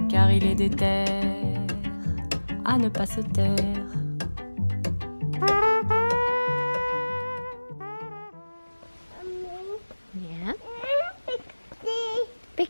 Car il est déter à ne pas se taire. Yeah. Big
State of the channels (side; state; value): both; inverted; correlation -1.00